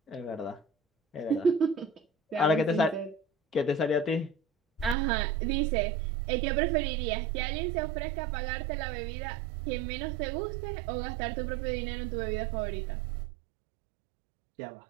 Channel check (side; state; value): left; drops out; at 5.0 s